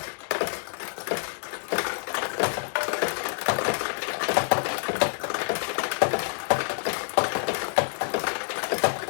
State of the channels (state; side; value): silent; right; digital silence